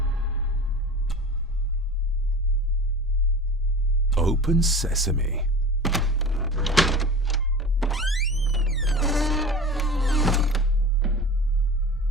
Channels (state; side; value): normal; both; correlation 0.35